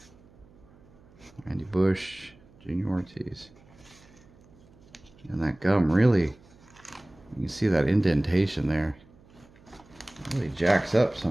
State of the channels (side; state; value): right; noise; hum, 26 dB below the sound